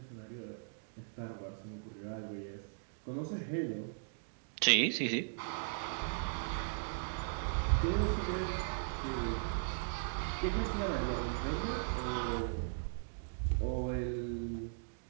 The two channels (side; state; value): left; silent; digital silence